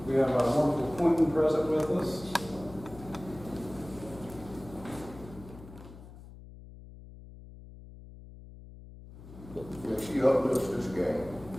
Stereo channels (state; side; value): noise; left; hum, 17 dB below the sound